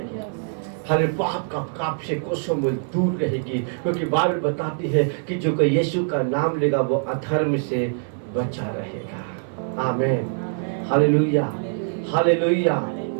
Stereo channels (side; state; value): left; silent; 59 dB below the other